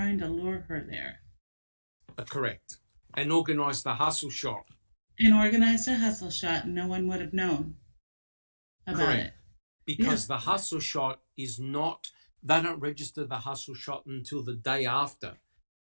to lure her there. Correct. And organized the hustle shot. And organized a hustle shot, no one would have known about it. Because the hustle shot is not, they don't register the hustle shot until the day after.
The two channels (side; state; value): both; inverted; correlation -1.00